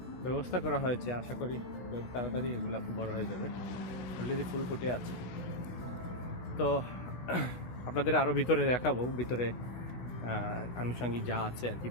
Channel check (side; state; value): right; late; 16 ms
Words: ব্যবস্থা করা হয়েছে। আশা করি খুব তাড়াতাড়ি এগুলো বড় হয়ে যাবে। অলরেডি ফুল ফুটে আছে। তো আপনাদের আরও ভিতরে দেখাবো, ভিতরে আনুষঙ্গিক যা আছে আর কি